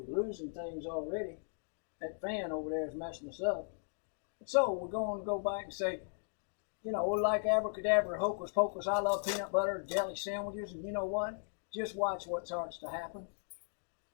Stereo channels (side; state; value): right; silent; digital silence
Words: we're losing things already. That fan over there is messing us up. So we're going to go back and say, like abracadabra, hocus pocus, I love peanut butter, jelly sandwiches, and you know what? Just watch what starts to happen.